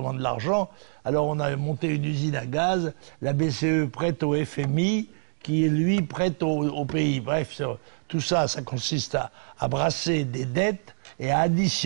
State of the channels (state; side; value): silent; left; digital silence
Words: de l'argent. Alors on a monté une usine à gaz, la BCE prête au FMI, qui lui prête au pays. Bref, tout ça, ça consiste à brasser des dettes et à